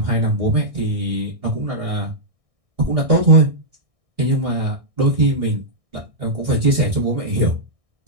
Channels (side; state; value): left; late; 1.6 ms